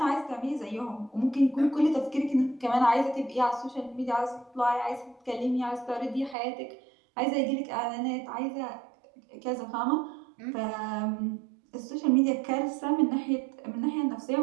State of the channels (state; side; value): drops out; left; at 6.4 s